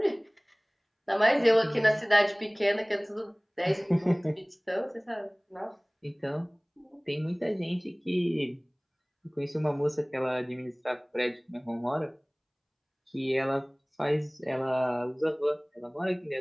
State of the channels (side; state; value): both; identical; correlation 1.00